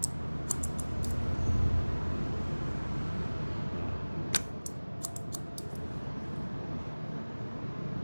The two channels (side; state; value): both; inverted; correlation -1.00